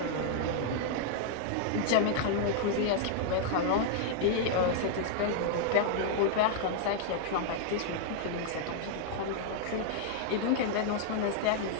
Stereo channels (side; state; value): both; different; correlation -0.01